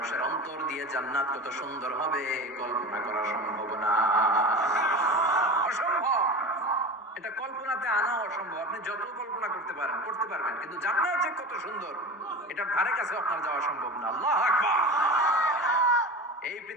অন্তর দিয়ে জান্নাত কত সুন্দর হবে কল্পনা করা সম্ভব না, অসম্ভব। এটা কল্পনাতে আনা অসম্ভব। আপনি যত কল্পনা করতে পারবেন, কিন্তু জান্নাত যে কত সুন্দর এটার ধারে কাছে আপনার যাওয়া সম্ভব না। আল্লাহু আকবার। এই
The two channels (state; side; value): normal; both; correlation 0.30